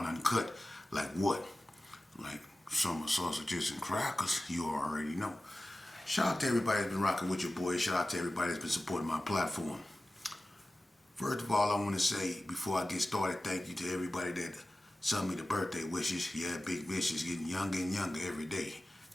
uncut. Like what? Like summer sausages and crackers. You already know. Shout out to everybody that's been rocking with your boy. Shout out to everybody that's been supporting my platform. First of all, I want to say, before I get started, thank you to everybody that sent me the birthday wishes. Yeah, Big Mitch is getting younger and younger every day.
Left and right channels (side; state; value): both; normal; correlation 0.96